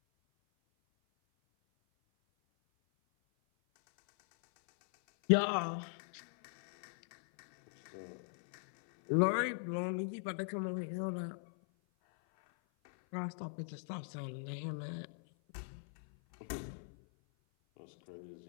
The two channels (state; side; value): silent; right; 52 dB below the other